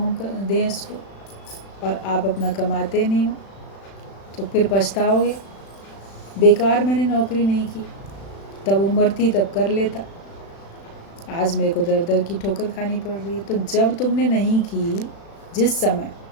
दें इसको, और आप अपना कमाते नहीं हो, तो फिर पछताओगे बेकार मैंने नौकरी नहीं की, तब उम्र थी तब कर लेता, आज मेरे को दर दर की ठोकर खानी पड़ रही है। तो जब तुमने नहीं की, जिस समय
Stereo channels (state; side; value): late; right; 36 ms